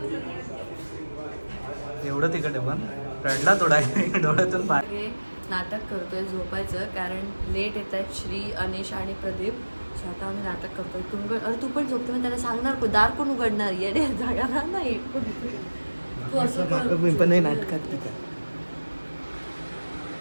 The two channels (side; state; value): both; inverted; correlation -1.00